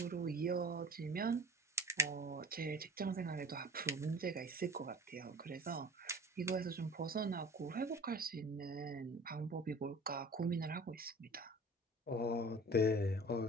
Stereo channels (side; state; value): both; normal; correlation 0.43